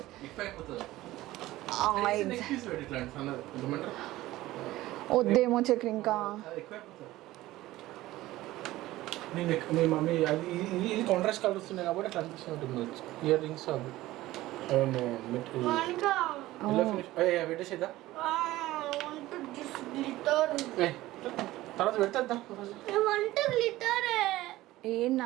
వద్దేమో చక్రి ఇంకా. ఇది కాంట్రాస్ట్ కలర్ వస్తున్నాయి కాబట్టి అట్లా అనిపిస్తుంది. ఇయర్ రింగ్స్ అవి పెట్టేసేదా తర్వాత పెడతా. ఏం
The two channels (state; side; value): quieter; left; 16.9 dB